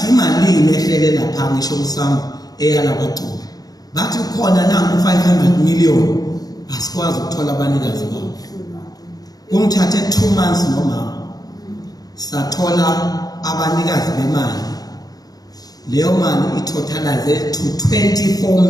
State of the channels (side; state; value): right; late; 0.18 ms